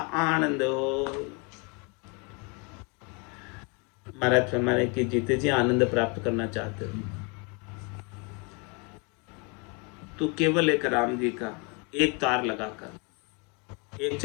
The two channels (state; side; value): quieter; right; 32.8 dB